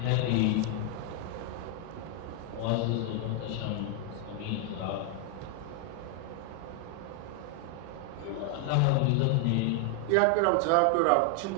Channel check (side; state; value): both; different; correlation 0.00